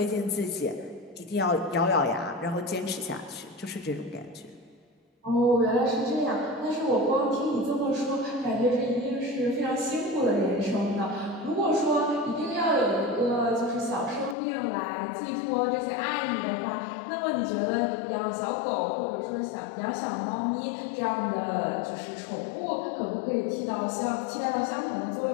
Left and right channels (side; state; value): right; drops out; at 14.4 s